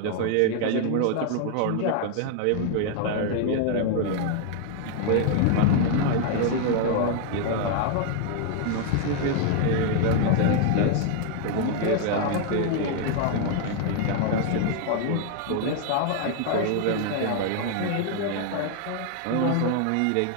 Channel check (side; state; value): both; different; correlation 0.00